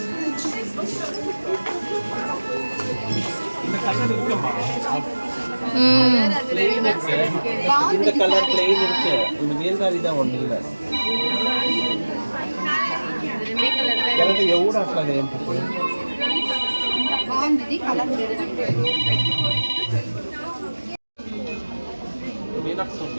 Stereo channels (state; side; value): inverted; both; correlation -1.00